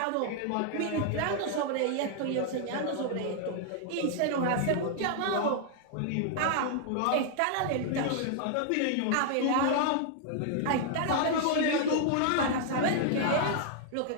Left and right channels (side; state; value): both; different; correlation 0.00